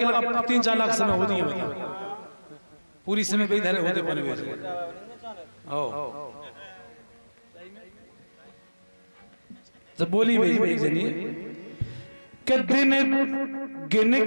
लगा 3-4 लाख समय होती है, पूरी समय पे इधर होते बने हुए। तो बोली भाई जनी के दिन गिन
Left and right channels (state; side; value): inverted; both; correlation -1.00